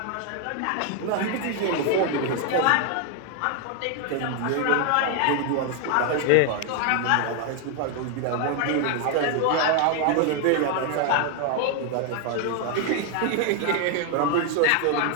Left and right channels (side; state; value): both; different; correlation 0.01